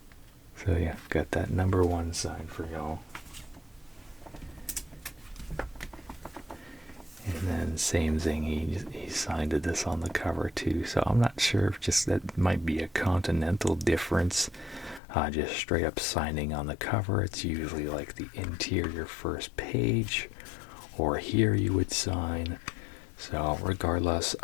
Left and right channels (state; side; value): drops out; right; at 15.0 s